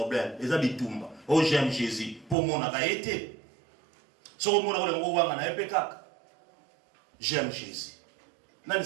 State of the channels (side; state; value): left; drops out; at 2.4 s